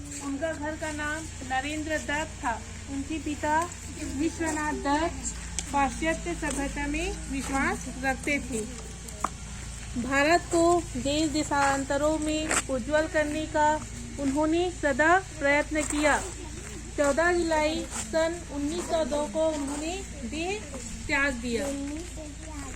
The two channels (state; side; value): identical; both; correlation 1.00